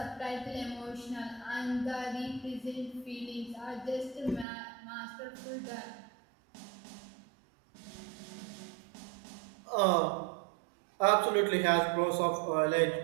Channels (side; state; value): left; drops out; at 4.5 s